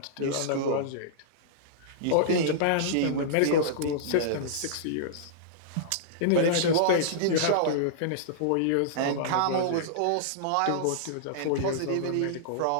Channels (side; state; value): both; different; correlation -0.02